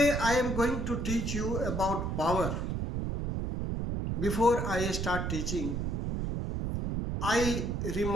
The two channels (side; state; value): right; noise; rumble, 2 dB below the sound